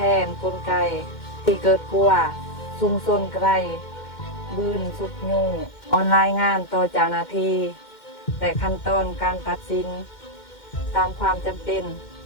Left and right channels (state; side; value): late; right; 2.1 ms